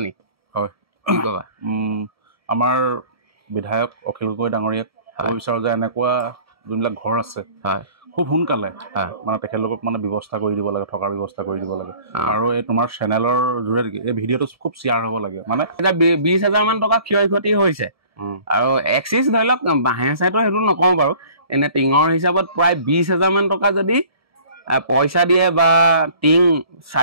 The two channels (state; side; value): late; left; 1.7 ms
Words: নি হয় কি ক'বা আমাৰ বিধায়ক অখিল গগৈ ডাঙৰীয়াক ক'ব বিচাৰোঁ যে এনেকুৱা যোনবিলাক ঘৰ আছে খুব সোনকালে মানে তেখেতলোকক মানে ব্যৱস্থা কৰি দিব লাগে থকাৰ ব্যৱস্থা কৰি দিব লাগে আৰু এই তোমাৰ চেনেলৰ যোগেদি এই ভিডিঅ'টো খুব শ্বেয়াৰ হ'ব লাগে মানে 20,000 মান টকা ক্ষয় ক্ষতি হৈছে আৰু এক্সিছ ধৰি লওক বাঁহে চাইটো সেইটো নকওঁ বাৰু এনে টিঙৰ হিচাপত প্ৰায় 20,000 মান টকা যদি পইচা দিয়ে বা টিং